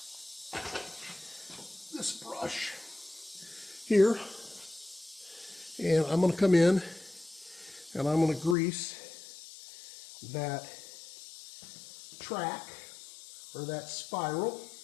this brush here, and I'm going to come in and I'm going to grease that track or that spiral.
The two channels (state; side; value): drops out; right; at 8.6 s